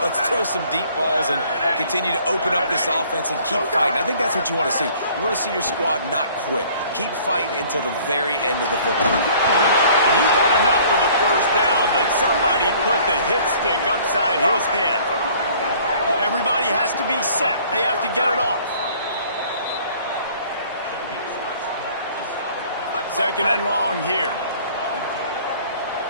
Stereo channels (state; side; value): inverted; both; correlation -0.54